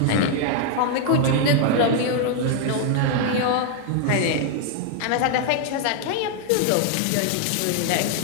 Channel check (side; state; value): both; different; correlation 0.00